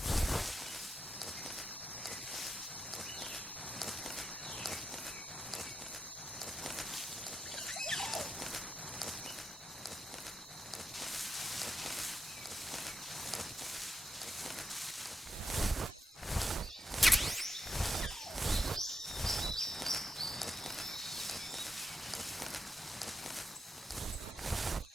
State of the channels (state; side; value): normal; both; correlation 0.86